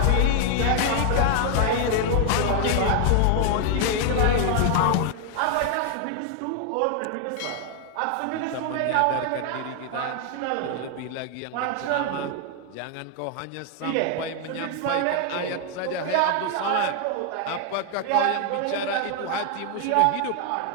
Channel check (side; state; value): both; different; correlation 0.00